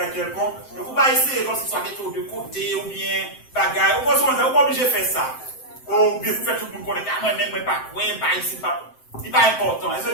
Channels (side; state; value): right; late; 7.7 ms